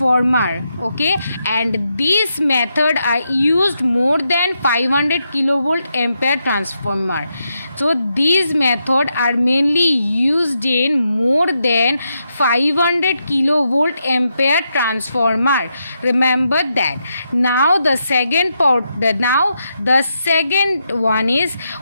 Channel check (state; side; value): inverted; both; correlation -0.83